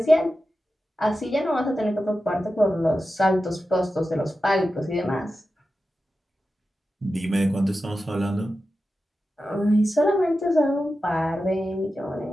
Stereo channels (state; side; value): normal; both; correlation 0.92